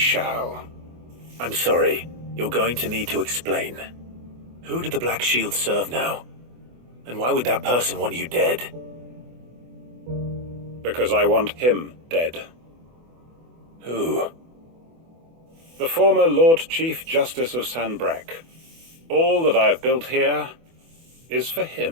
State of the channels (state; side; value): late; left; 24 ms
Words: I'm sorry. You're going to need to explain. Who did the Black Shield serve now? And why would that person want you dead? Because I want him dead. Who? The former Lord Chief Justice of Sanbreque. All that I have built here is for